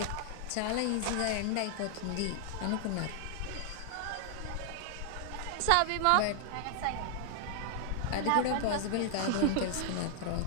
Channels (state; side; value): different; both; correlation 0.00